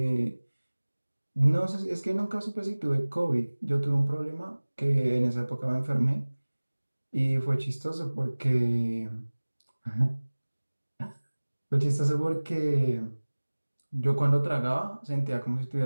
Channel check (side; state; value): both; inverted; correlation -1.00